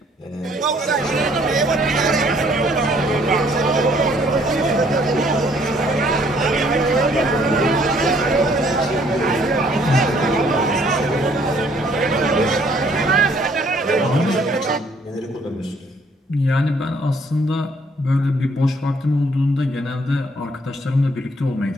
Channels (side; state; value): both; normal; correlation 0.63